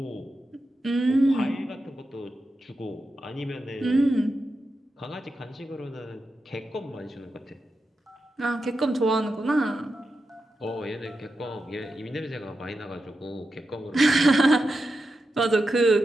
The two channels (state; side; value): normal; both; correlation 0.89